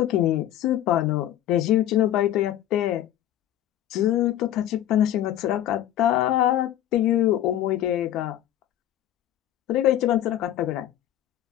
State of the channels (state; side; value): quieter; right; 12.2 dB